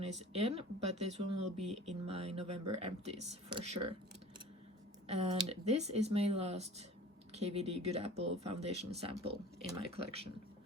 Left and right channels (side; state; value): both; normal; correlation 0.42